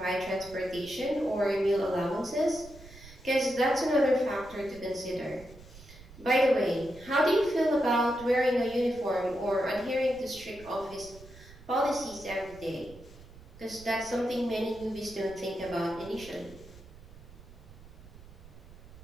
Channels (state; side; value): noise; right; rumble, 19 dB below the sound